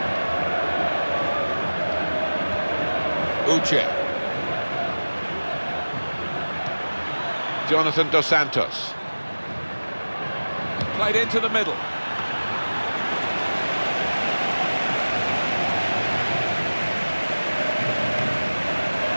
Uche. Jonathan Dos Santos. Played into the middle.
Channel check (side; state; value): both; inverted; correlation -1.00